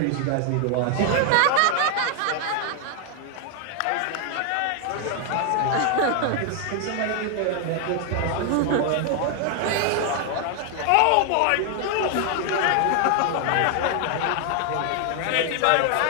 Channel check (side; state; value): both; different; correlation 0.00